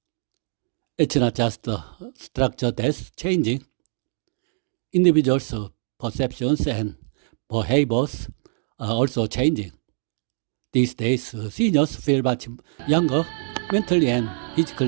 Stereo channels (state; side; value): silent; left; 56 dB below the other